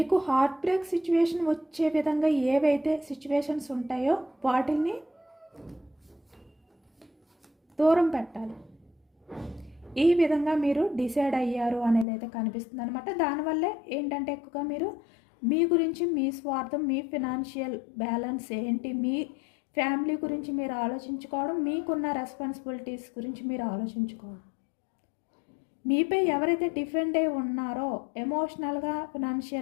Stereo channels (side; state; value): right; drops out; at 12.1 s